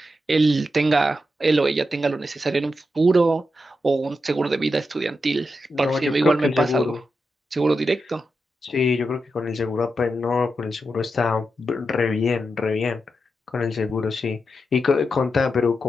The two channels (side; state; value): both; normal; correlation 0.87